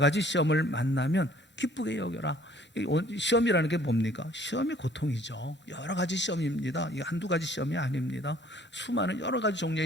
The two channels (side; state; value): both; normal; correlation 0.57